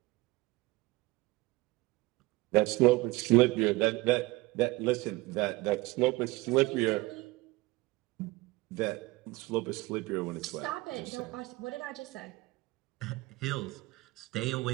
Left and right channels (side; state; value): left; quieter; 21.3 dB